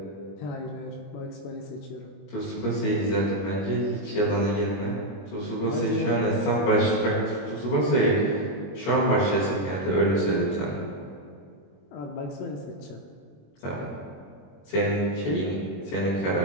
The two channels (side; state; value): right; late; 21 ms